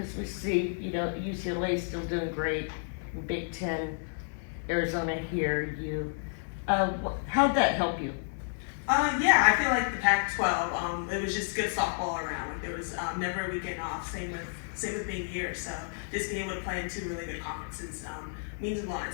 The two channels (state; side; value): silent; right; digital silence